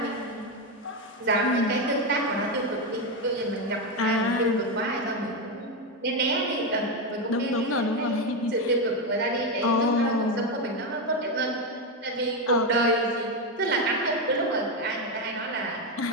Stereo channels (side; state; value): both; normal; correlation 0.09